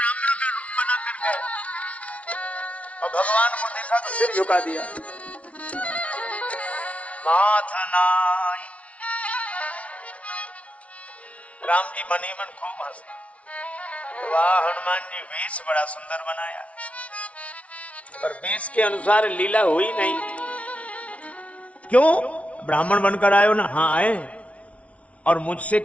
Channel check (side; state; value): right; late; 0.064 ms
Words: का रूप बना कर गए और भगवान को देखा तो सिर झुका दिया। माथनाई राम जी मन ही मन खूब हंसे। वाह हनुमान जी, वेश बड़ा सुंदर बनाया, पर वेश के अनुसार लीला हुई नहीं। क्यों? ब्राह्मण बनकर आए हो ना? हाँ आए, और मुझसे